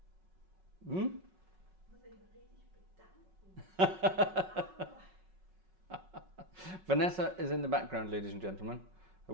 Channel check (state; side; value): late; left; 5.4 ms